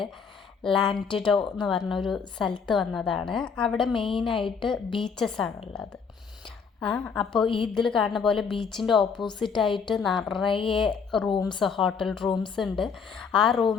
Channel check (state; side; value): quieter; right; 5.9 dB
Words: ലാൻഡിഡോ എന്ന് പറഞ്ഞൊരു സ്ഥലത്ത് വന്നതാണ്. അവിടെ മെയിനായിട്ട് ബീച്ചസ് ആണുള്ളത്. അപ്പോൾ ഇതിൽ കാണുന്ന പോലെ ബീച്ചിൻ്റെ ഓപ്പോസിറ്റായിട്ട് നിറയെ ഹോട്ടൽ റൂംസ് ഉണ്ട്. ആ